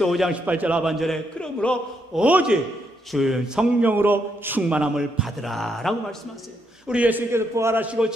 5장 18절 하반절에 그러므로 오직 주 성령으로 충만함을 받으라 라고 말씀하세요. 우리 예수님께서 부활하시고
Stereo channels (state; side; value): normal; both; correlation 0.77